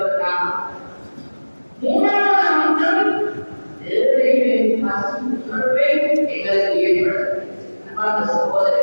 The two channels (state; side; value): inverted; both; correlation -1.00